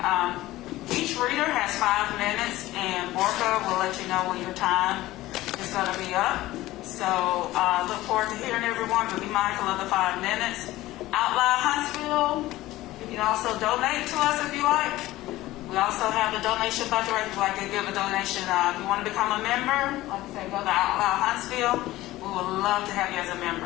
Each reader has 5 minutes, and Borka will let you know when your time is going to be up. So look forward to hearing everyone, but be mindful of the 5 minutes. Out Loud Huntsville, you can also donate to us if you like. We also have the donation bucket right if you'd like to give a donation. If you want to become a member, like I said, go to Out Loud Huntsville. We would love to have you as a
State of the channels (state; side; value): quieter; right; 16.9 dB